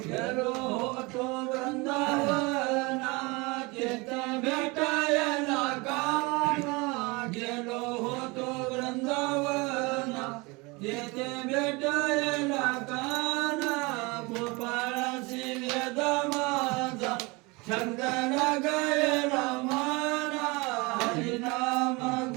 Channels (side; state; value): left; quieter; 26.0 dB